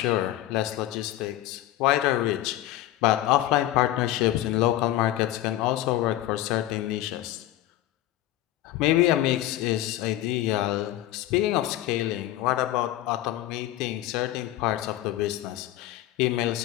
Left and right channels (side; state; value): right; quieter; 14.3 dB